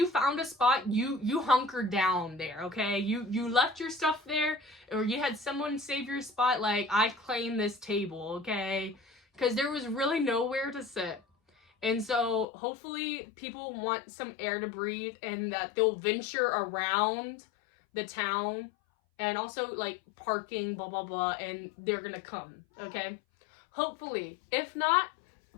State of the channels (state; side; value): drops out; right; at 12.5 s